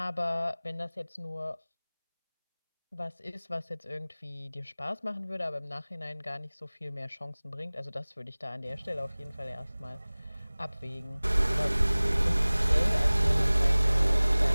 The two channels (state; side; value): inverted; both; correlation -0.99